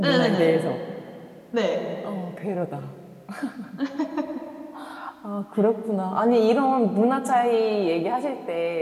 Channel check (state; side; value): identical; both; correlation 1.00